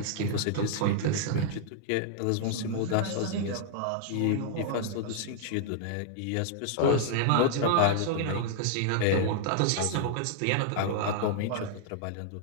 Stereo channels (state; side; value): different; both; correlation -0.01